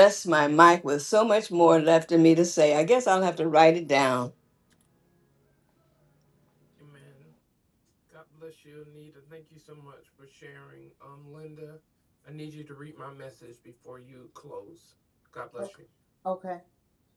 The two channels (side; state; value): both; identical; correlation 1.00